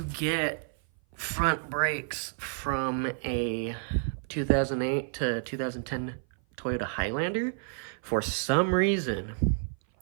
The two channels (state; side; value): silent; left; 55 dB below the other